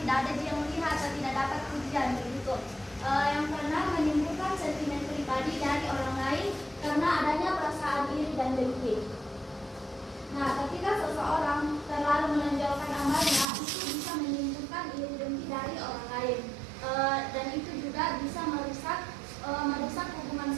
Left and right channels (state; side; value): drops out; left; at 13.5 s